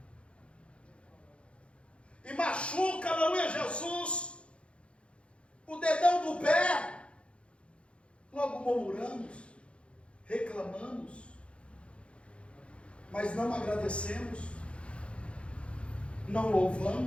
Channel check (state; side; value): late; right; 0.059 ms